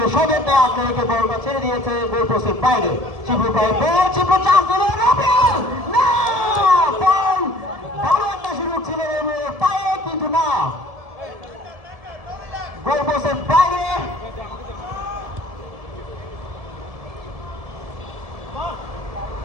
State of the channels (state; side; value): late; left; 1.7 ms